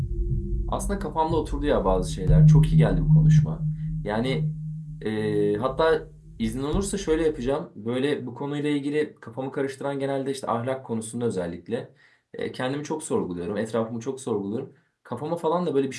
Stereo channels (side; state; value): both; identical; correlation 1.00